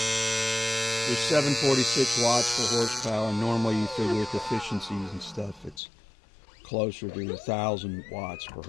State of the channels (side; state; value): right; drops out; at 5.8 s